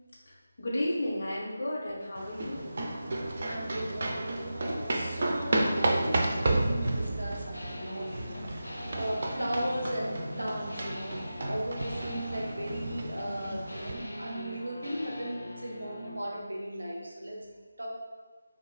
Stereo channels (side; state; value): both; inverted; correlation -0.92